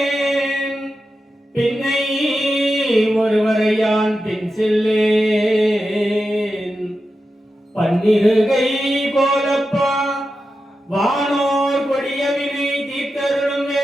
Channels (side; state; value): both; normal; correlation 0.90